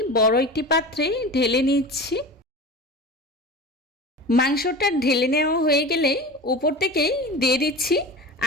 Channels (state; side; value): normal; both; correlation 0.32